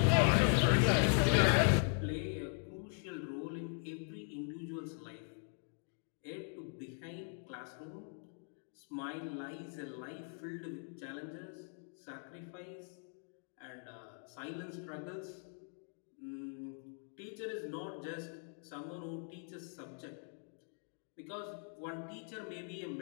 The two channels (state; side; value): silent; right; 51 dB below the other